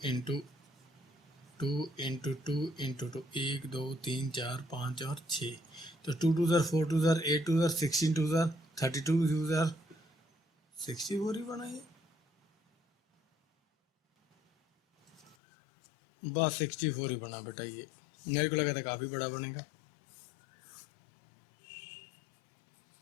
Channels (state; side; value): drops out; right; at 15.4 s